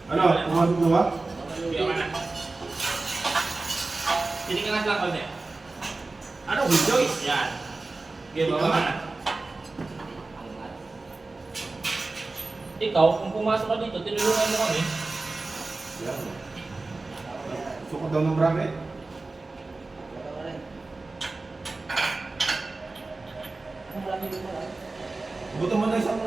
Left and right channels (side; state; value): left; quieter; 3.4 dB